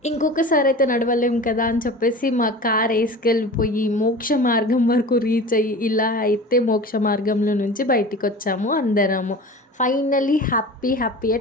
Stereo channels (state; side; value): normal; both; correlation 0.36